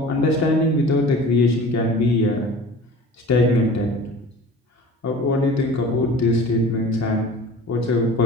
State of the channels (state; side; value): normal; both; correlation 0.41